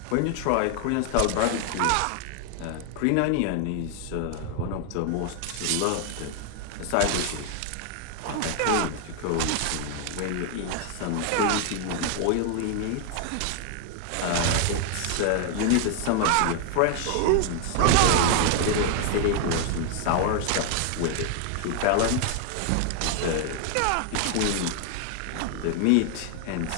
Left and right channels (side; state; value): both; different; correlation 0.00